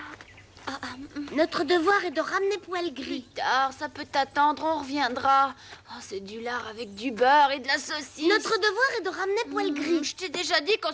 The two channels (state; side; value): identical; both; correlation 1.00